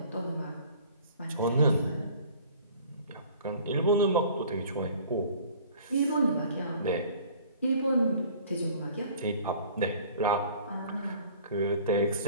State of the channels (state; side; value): inverted; both; correlation -0.49